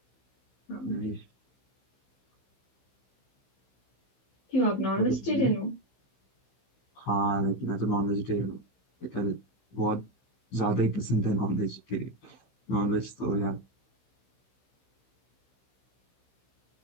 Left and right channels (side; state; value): right; late; 16 ms